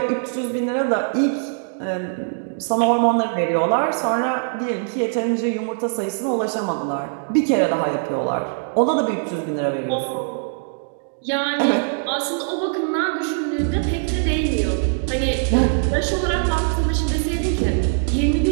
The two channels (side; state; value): left; silent; digital silence